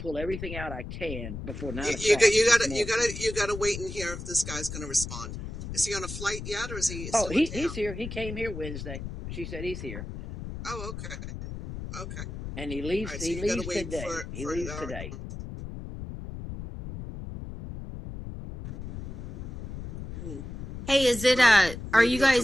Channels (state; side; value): noise; left; rumble, 8 dB below the sound